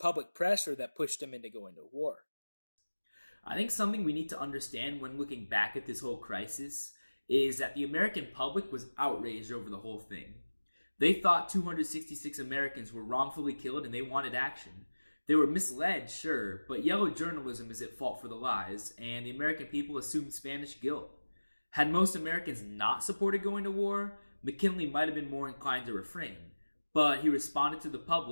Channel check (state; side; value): inverted; both; correlation -1.00